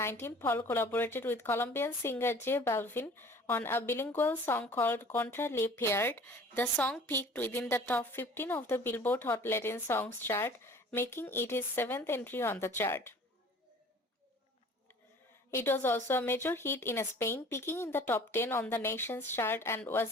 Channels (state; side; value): normal; both; correlation 0.48